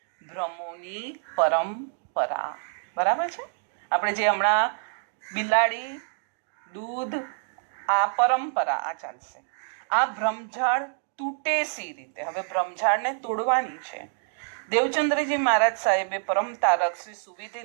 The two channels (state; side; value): silent; left; digital silence